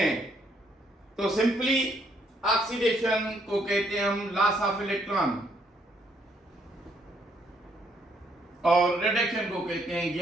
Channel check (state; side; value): normal; both; correlation 0.70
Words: तो सिंपली ऑक्सीडेशन को कहते हैं हम लॉस ऑफ इलेक्ट्रॉन और रिडक्शन को कहते हैं